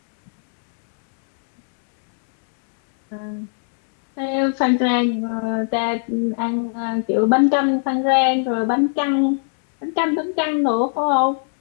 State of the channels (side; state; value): right; silent; digital silence